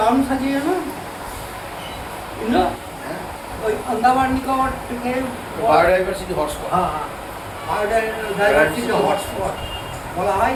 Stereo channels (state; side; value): identical; both; correlation 1.00